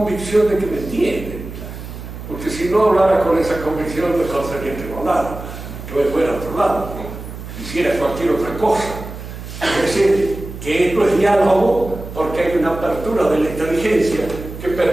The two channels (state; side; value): noise; right; hum, 11 dB below the sound